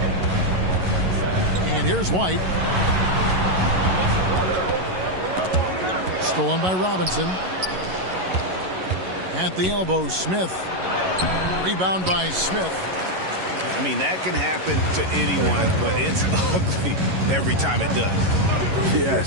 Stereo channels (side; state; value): left; late; 11 ms